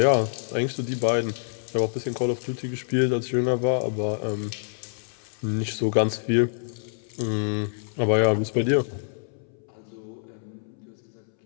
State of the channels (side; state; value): right; silent; 61 dB below the other